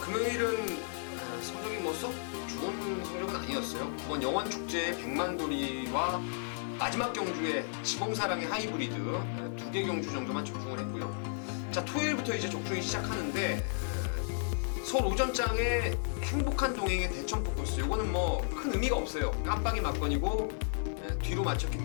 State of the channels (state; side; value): silent; right; digital silence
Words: 성적이 썩 좋은 성적은 아니었어요. 9번 영원축제의 백만돌이와 마지막 경주에 지공사랑의 하이브리드 2개 경주 정도만 적중을 했고요. 자, 토요일부터 이제 적중이 시작하는데 서울 오전장의 행복한 동행의 대천 포커스, 요거는 큰 의미가 없어요. 깜빡이 막건이고 뒤로 맞췄기